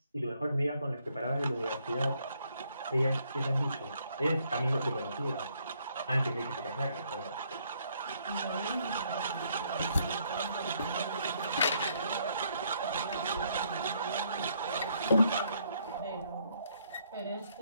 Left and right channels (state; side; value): inverted; both; correlation -0.70